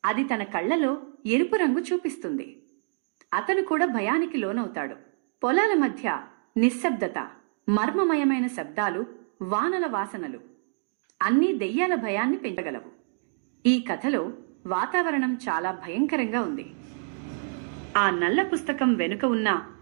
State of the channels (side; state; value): left; silent; digital silence